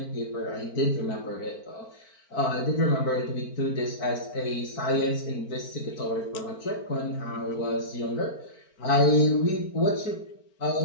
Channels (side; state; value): right; late; 4.4 ms